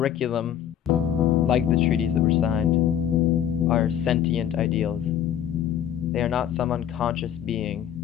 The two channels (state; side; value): quieter; right; 10.2 dB